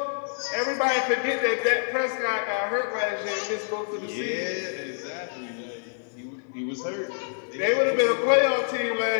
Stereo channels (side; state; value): right; silent; 60 dB below the other